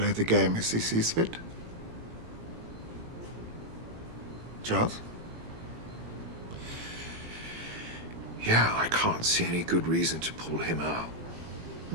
the game as he sees fit. Charles? Yeah, I can't see any good reason to pull him out.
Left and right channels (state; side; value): late; left; 18 ms